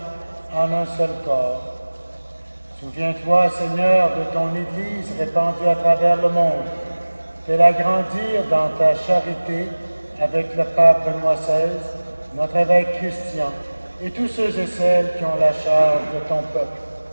en un seul corps. Souviens-toi, Seigneur, de ton Église répandue à travers le monde. Fais-la grandir dans ta charité avec le pape Benoît XVI, notre évêque Christian, et tous ceux et celles qui ont la charge de ton peuple.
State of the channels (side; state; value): both; inverted; correlation -1.00